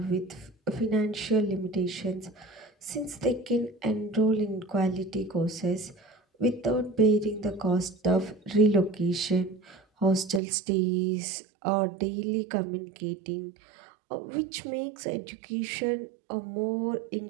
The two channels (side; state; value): left; drops out; at 10.4 s